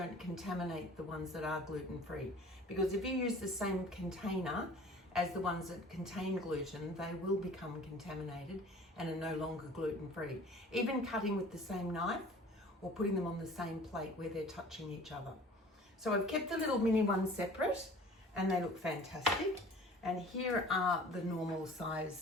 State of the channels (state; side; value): normal; both; correlation 0.47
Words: contaminate the ones that are gluten-free, because if you use the same container as the ones that contain gluten, they will become contaminated and are no longer gluten-free. Even cutting with the same knife or putting them on the same plate where they're touching each other. So I've kept the little mini ones separate and they look fantastic. And here are the normal